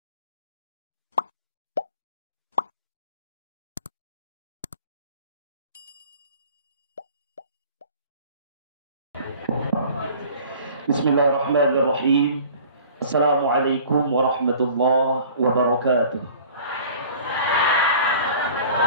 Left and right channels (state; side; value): inverted; both; correlation -0.47